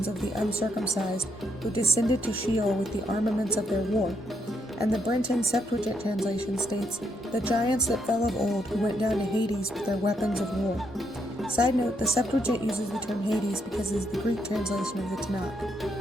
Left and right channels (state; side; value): normal; both; correlation 0.76